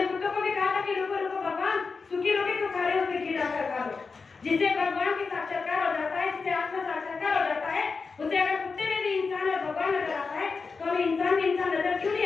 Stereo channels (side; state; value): right; quieter; 4.7 dB